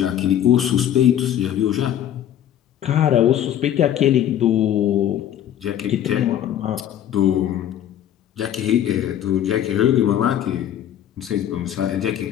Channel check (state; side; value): quieter; right; 10.8 dB